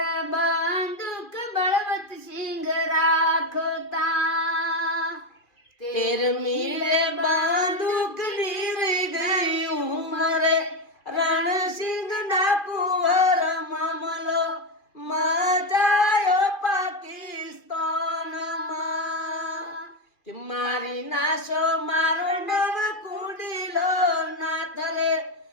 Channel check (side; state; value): right; late; 2.6 ms